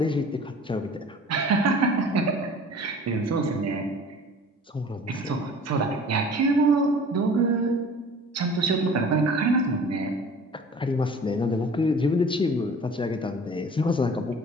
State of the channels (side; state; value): both; normal; correlation 0.45